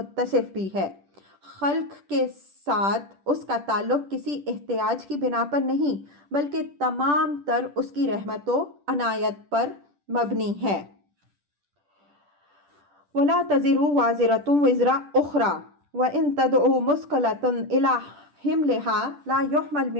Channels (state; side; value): late; left; 10 ms